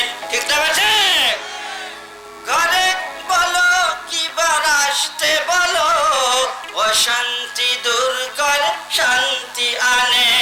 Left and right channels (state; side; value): identical; both; correlation 1.00